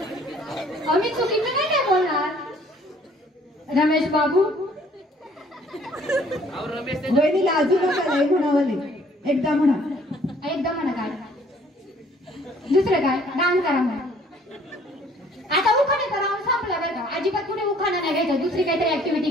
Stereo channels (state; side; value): normal; both; correlation 0.58